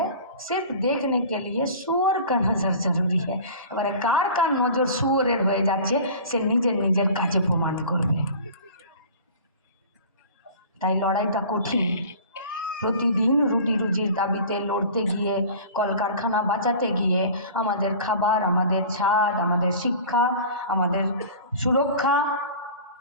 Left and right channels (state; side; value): inverted; both; correlation -0.41